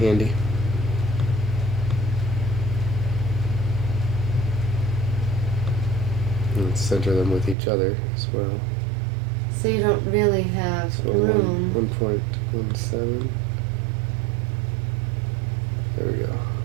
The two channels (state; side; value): drops out; left; at 7.6 s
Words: And center them with each other as well. So you don't really have So room. 1.17. There we go.